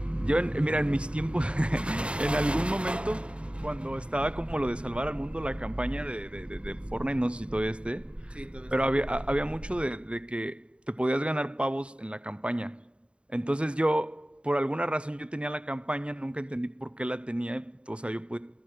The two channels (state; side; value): late; left; 0.057 ms